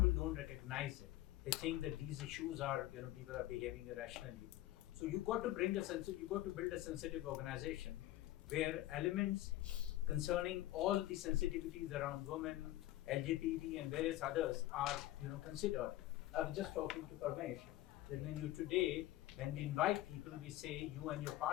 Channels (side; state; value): right; quieter; 15.6 dB